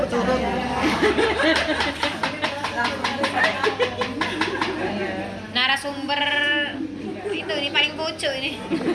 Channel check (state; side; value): identical; both; correlation 1.00